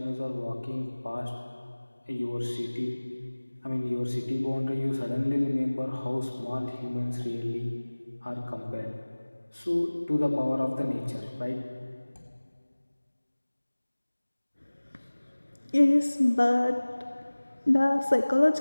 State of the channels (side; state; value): both; inverted; correlation -1.00